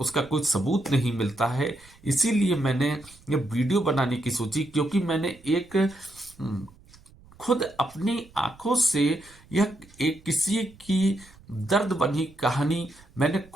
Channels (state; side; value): noise; right; rumble, 26 dB below the sound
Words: कोई सबूत नहीं मिलता है। इसीलिए मैंने ये वीडियो बनाने की सोची, क्योंकि मैंने एक खुद अपनी आंखों से यह एक किसी की दर्द बनी कहानी मैंने